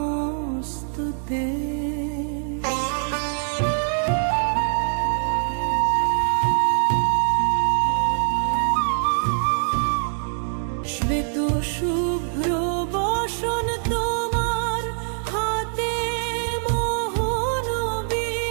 শ্বেত শুভ্র বসন তোমার হাতে মোহন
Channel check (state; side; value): silent; left; digital silence